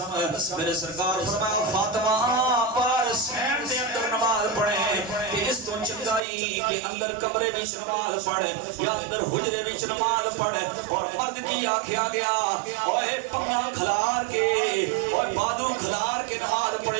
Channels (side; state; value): left; drops out; at 6.2 s